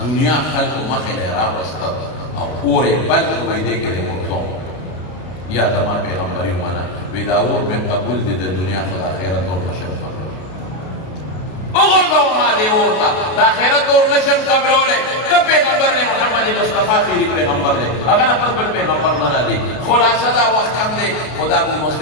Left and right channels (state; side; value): late; right; 33 ms